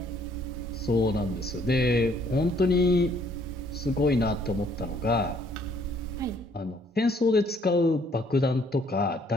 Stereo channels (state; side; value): normal; both; correlation 0.64